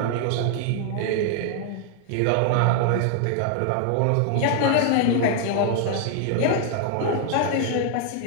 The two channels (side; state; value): both; different; correlation 0.00